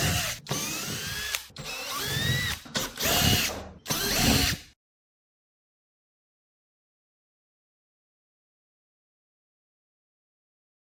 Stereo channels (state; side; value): identical; both; correlation 1.00